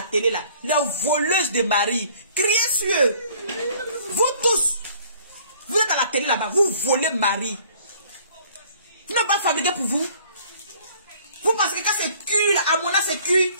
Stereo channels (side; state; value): both; inverted; correlation -0.56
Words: télé là. Les voleuses de mari. Criez sur eux. Vous tous. Vous êtes à la télé là-bas. Vous volez mari. Vous n'avez pas fabriqué pour vous. Vous pensez que quand c'est cuit là, Amona c'est cuit.